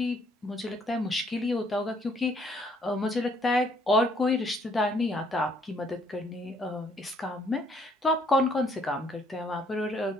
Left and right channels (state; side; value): normal; both; correlation 0.65